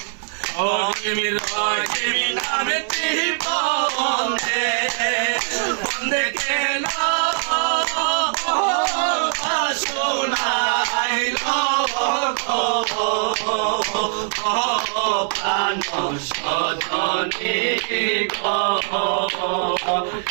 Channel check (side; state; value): left; silent; 64 dB below the other